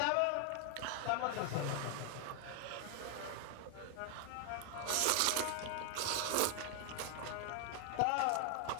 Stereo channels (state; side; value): different; both; correlation 0.00